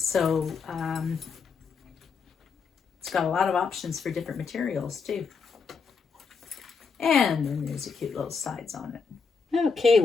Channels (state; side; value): quieter; right; 5.3 dB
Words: it's got a lot of options for different materials too. And then there's a cute little sides on it. Okay,